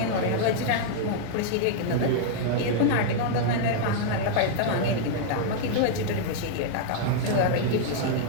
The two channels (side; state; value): both; different; correlation -0.01